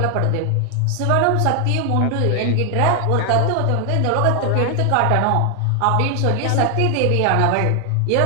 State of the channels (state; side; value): different; both; correlation 0.00